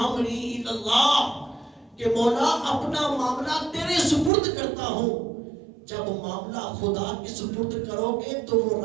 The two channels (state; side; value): drops out; left; at 4.3 s